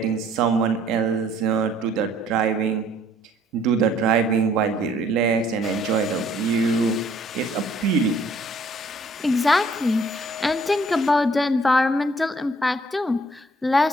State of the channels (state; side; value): normal; both; correlation 0.61